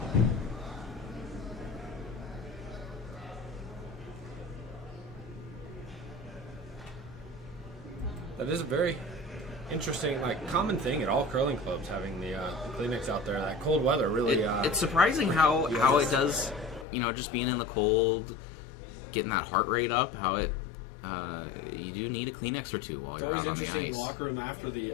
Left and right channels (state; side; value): drops out; right; at 16.9 s